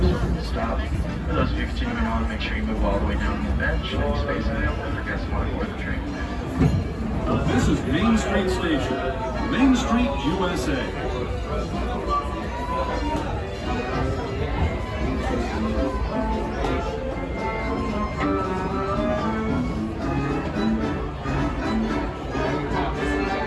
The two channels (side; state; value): both; identical; correlation 1.00